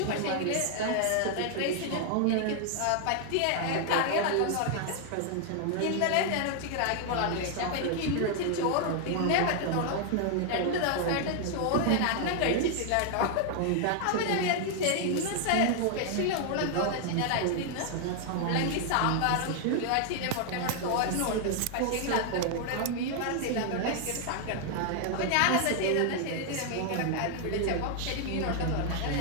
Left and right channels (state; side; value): different; both; correlation 0.00